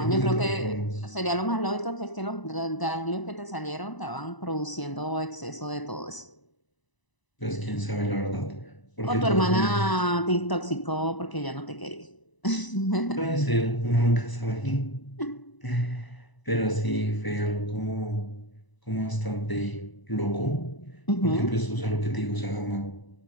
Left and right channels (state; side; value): late; right; 1.0 ms